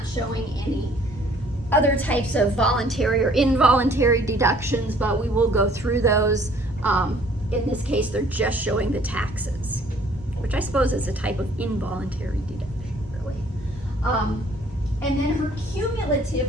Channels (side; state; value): both; normal; correlation 0.58